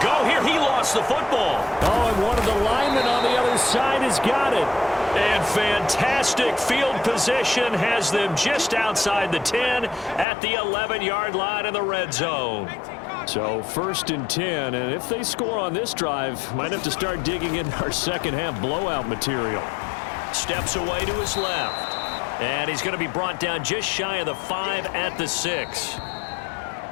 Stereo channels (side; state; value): right; drops out; at 10.2 s